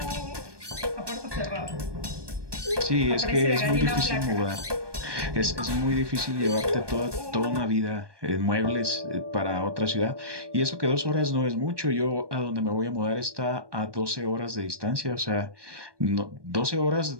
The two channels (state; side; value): late; left; 1.2 ms